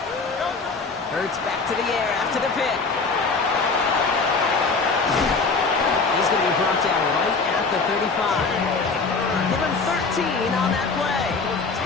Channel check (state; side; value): quieter; right; 4.3 dB